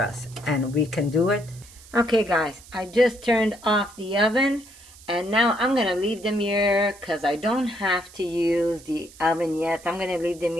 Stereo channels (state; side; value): noise; right; hiss, 21 dB below the sound